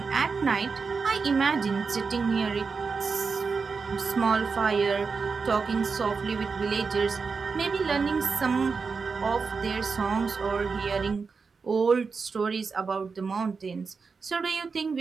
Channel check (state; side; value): quieter; left; 5.0 dB